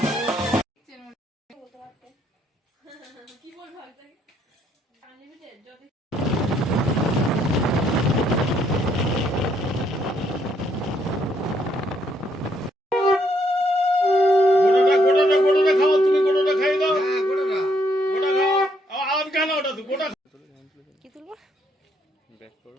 কি বলবো আনলিমিটেড যদি কি তুলবো ব্যাক করো।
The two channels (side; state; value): both; normal; correlation 0.71